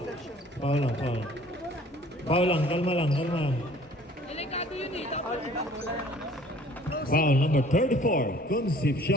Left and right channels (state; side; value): normal; both; correlation 0.53